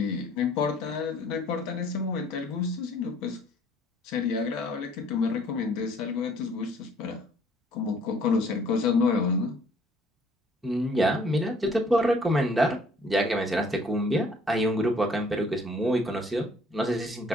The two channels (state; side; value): normal; both; correlation 0.58